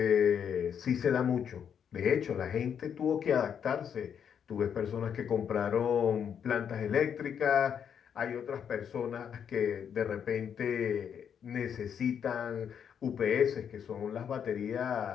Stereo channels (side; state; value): right; quieter; 8.0 dB